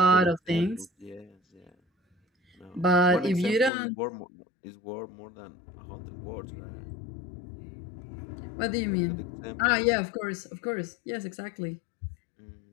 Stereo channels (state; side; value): drops out; right; at 3.7 s